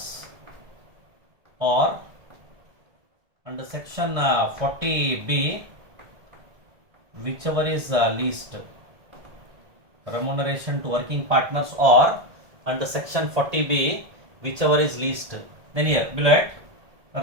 or under section 40B, whichever is least. Remuneration to working partners or under section 40B, whichever is least. Then here below it,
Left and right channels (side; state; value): left; late; 1.7 ms